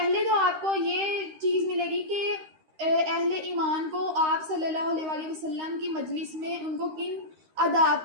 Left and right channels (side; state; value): left; late; 13 ms